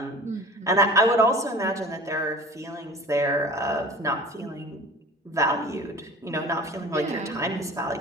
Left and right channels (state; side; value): normal; both; correlation 0.41